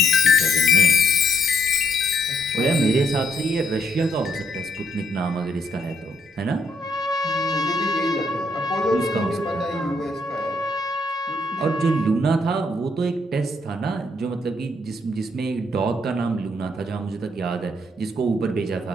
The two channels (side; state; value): both; normal; correlation 0.72